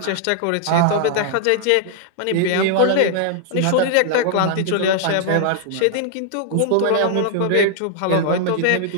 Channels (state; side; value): different; both; correlation -0.01